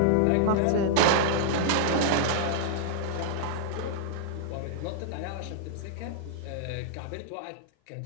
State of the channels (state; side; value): different; both; correlation -0.01